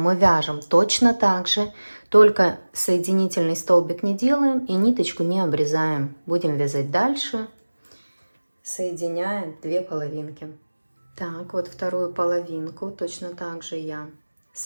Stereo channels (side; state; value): both; inverted; correlation -1.00